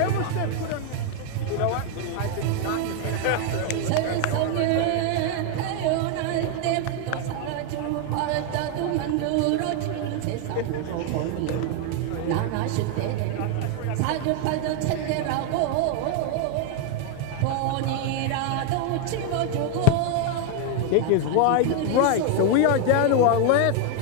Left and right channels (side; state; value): both; different; correlation 0.01